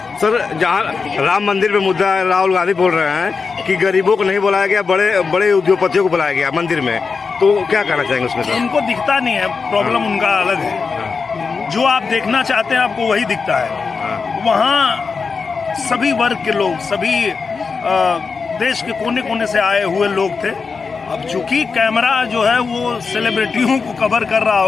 सर, जहाँ राम मंदिर पे मुद्दा है, राहुल गांधी बोल रहे हैं कि गरीबों को नहीं बुलाया गया, बड़े बड़े उद्योगपतियों को बुलाया गया मंदिर में, तो क्या कहना चाहेंगे उसमें सर? उनको दिखता नहीं है, प्रॉब्लम उनका अलग है। जो आप देखना चाहते हैं आपको वही दिखता है। वहाँ सभी वर्ग के लोग, सभी देश के कोने कोने से आए हुए लोग थे। अब चूंकि कैमरा जो है वो सेलिब्रिटियों को कवर कर रहा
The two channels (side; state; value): right; quieter; 5.0 dB